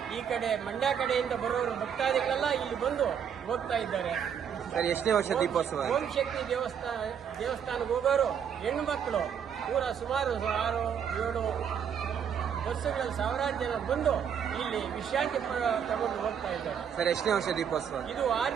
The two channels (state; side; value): quieter; left; 8.0 dB